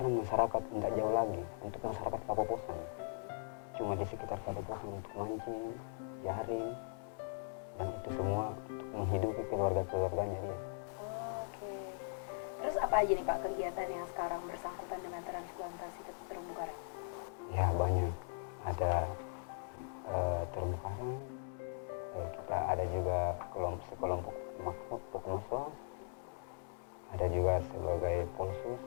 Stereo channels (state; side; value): silent; right; digital silence